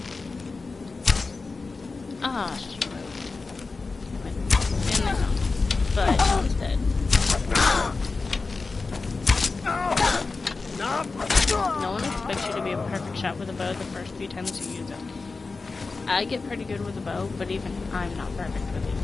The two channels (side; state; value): right; quieter; 4.0 dB